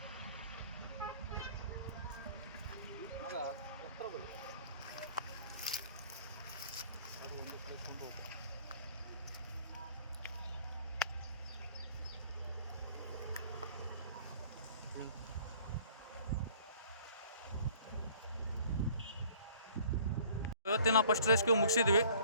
ಇವತ್ತಿನ ಫಸ್ಟ್ ರೆಸ್ಕ್ಯೂ ಮುಗಿಸಿದ್ವಿ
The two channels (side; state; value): both; inverted; correlation -0.53